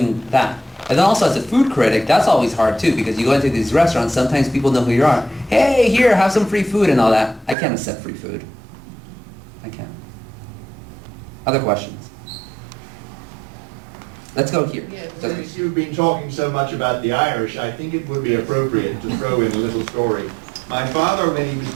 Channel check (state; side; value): drops out; left; at 7.6 s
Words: that. And then also as a food critic, that's always hard too, because you go into these restaurants, sometimes people know who you are. Hey, here, have some free food and all that. I can't accept free food. I can't. Other questions? Let's go here. Since you've been talking so much about the Irish, I think it would be appropriate to throw in a little story. My father, when he was